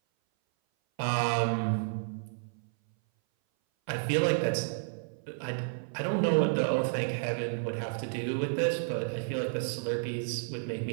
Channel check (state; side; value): silent; left; 57 dB below the other